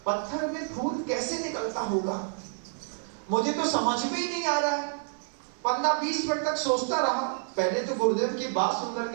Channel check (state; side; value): silent; left; 59 dB below the other